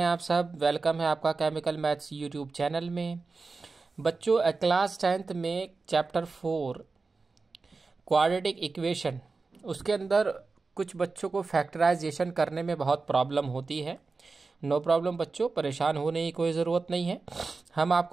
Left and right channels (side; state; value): left; quieter; 4.1 dB